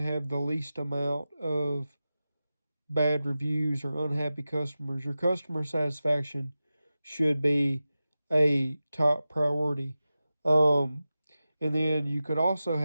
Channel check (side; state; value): both; inverted; correlation -0.94